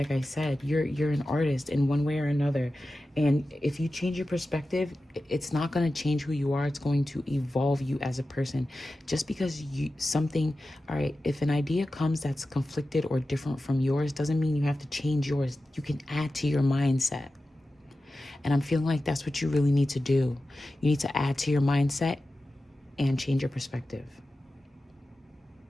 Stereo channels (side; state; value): both; normal; correlation 0.94